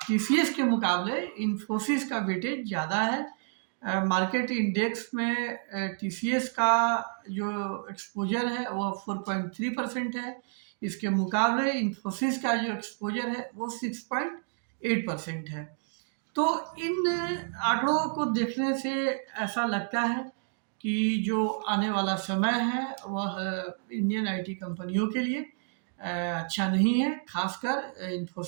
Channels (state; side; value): silent; left; 58 dB below the other